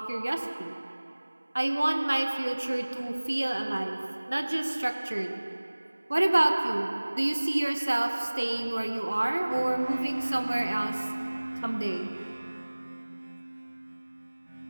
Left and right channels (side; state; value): both; inverted; correlation -1.00